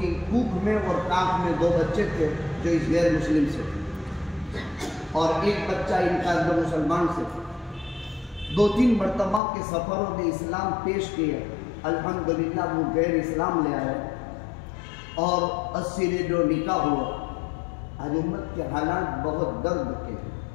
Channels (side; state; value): right; drops out; at 9.4 s